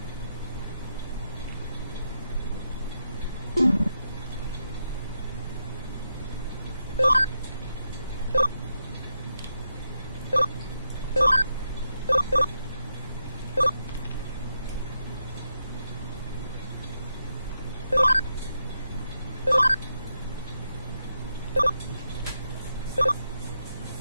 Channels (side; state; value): both; inverted; correlation -0.84